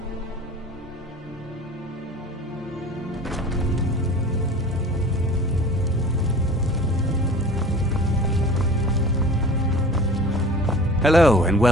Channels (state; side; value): normal; both; correlation 0.41